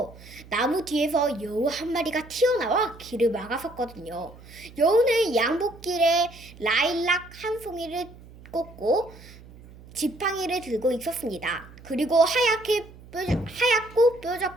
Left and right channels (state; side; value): noise; right; hum, 20 dB below the sound